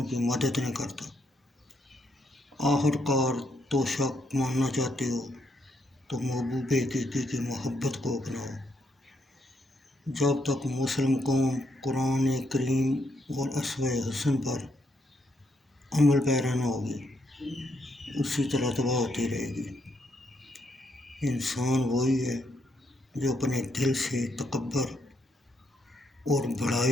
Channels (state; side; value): normal; both; correlation 0.76